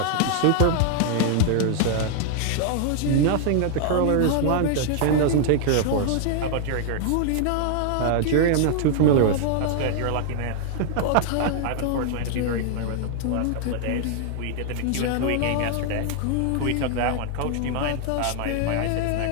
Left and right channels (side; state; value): both; different; correlation 0.00